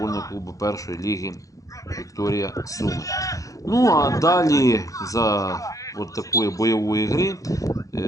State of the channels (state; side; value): late; right; 0.16 ms